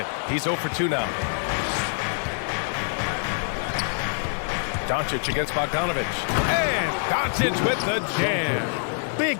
He's 0 for 2 now. Doncic against Bogdanović. And Doncic with the jam.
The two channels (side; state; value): right; silent; 56 dB below the other